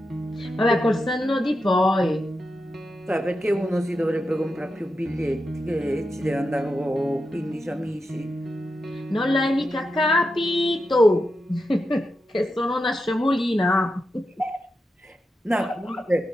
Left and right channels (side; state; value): both; normal; correlation 0.88